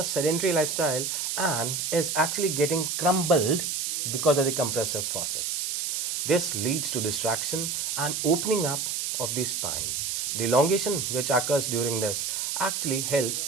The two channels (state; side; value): noise; right; hiss, 1 dB below the sound